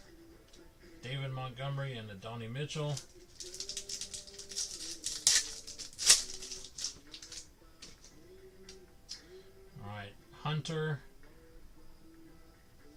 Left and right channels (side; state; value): both; identical; correlation 1.00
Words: David Montgomery, and Adonai Mitchell. Alright, Hunter.